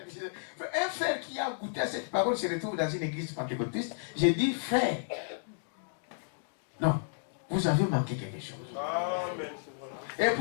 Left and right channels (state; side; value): silent; right; digital silence